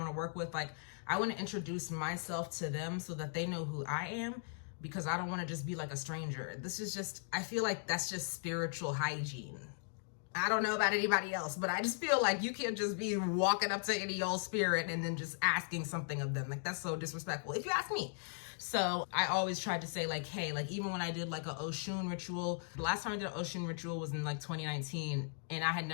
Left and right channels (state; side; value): silent; right; digital silence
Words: to work with. Like I want to introduce myself to them so that they know who I am, because I don't want to just be like a stranger. This is just, I feel like that's just spiritual hygiene. I don't know about anybody else, but I just feel like you can't just be walking up to any old spirit and then just asking something of them. Like that's so disrespectful, if you ask me. So I always tried to say like, hey, like even when I did like a Oshun ritual, the last time I did an Oshun ritual was in like 2019 and I had